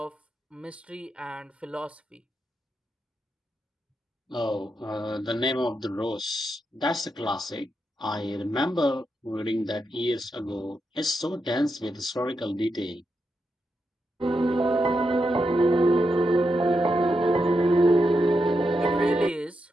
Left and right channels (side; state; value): both; normal; correlation 0.85